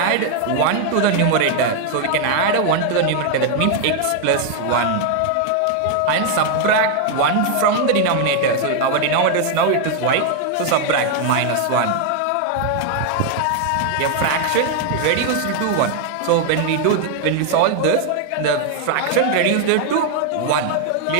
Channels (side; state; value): both; different; correlation 0.00